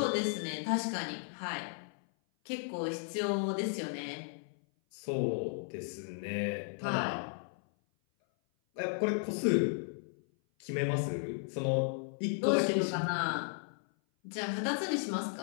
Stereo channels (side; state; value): right; silent; 55 dB below the other